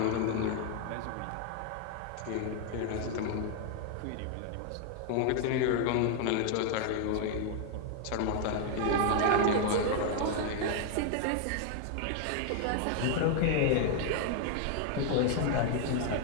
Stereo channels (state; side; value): different; both; correlation 0.00